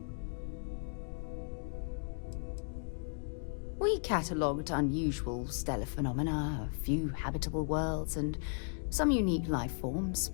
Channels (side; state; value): right; silent; digital silence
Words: We catalogued unusual stellar phenomena, a few habitable worlds, and some unique life forms,